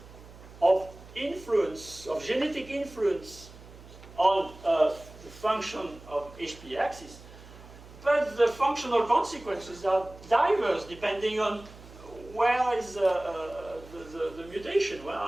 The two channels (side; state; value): right; noise; hum, 19 dB below the sound